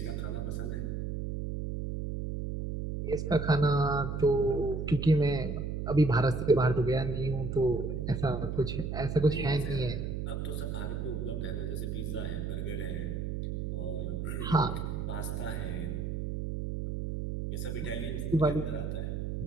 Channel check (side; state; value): right; noise; hum, 3 dB below the sound